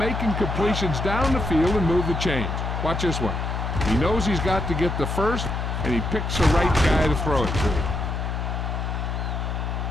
completions down the field and move the chains. Watch this one. He knows he's got to get the first, and he picks the right guy to throw it to.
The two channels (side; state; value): left; noise; hum, 2 dB below the sound